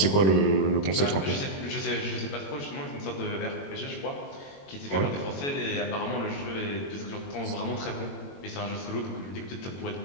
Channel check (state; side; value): late; right; 21 ms